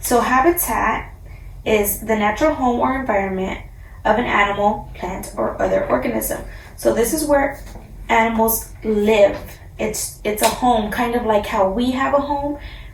habitat is the natural home or environment of an animal, plant, or other organism. So this is where animals live. It's a home, kind of like how we have a home.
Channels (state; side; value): identical; both; correlation 1.00